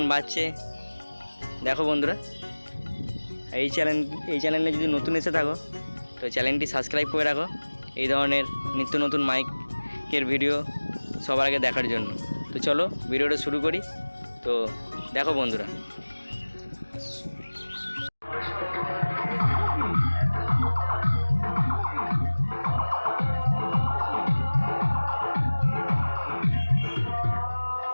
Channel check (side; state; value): both; inverted; correlation -1.00